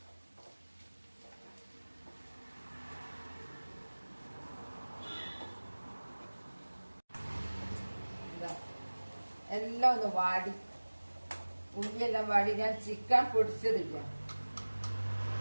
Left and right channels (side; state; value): both; inverted; correlation -1.00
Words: എല്ലാം ഒന്ന് വാടി, ഉള്ളിയെല്ലാം വാടി. ഞാൻ ചിക്കൻ പൊടിച്ചതില്ല.